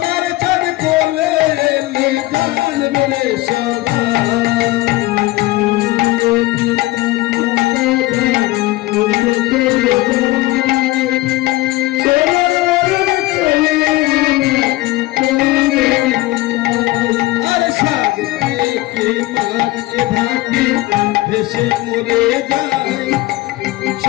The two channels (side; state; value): right; quieter; 18.7 dB